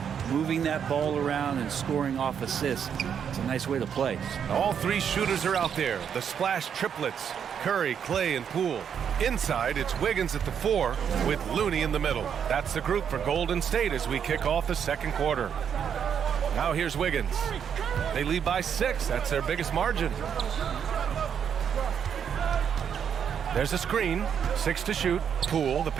moving that ball around and scoring off assists, it's a nice way to play. All three shooters are out there. The splash triplets. Curry, Clay, and Poole. Inside, it's Wiggins at the 4 with Looney in the middle. That's the group for Golden State as we kick off the second quarter. Now here's Wiggins. They lead by 6. That's their biggest margin. There's a screen. 6 to shoot. Poole, the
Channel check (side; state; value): left; quieter; 7.9 dB